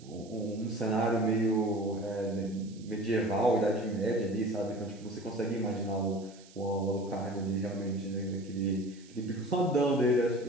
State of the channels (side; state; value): right; noise; hiss, 24 dB below the sound